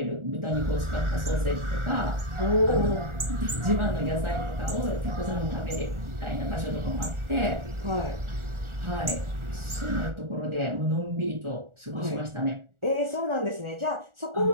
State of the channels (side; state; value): left; late; 1.4 ms